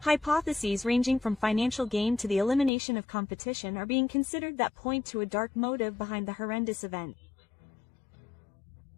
Hypotheses ranging from financial gain to the elimination of competition are being considered that point to a dark motive behind the horrendous event.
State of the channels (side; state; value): right; drops out; at 2.7 s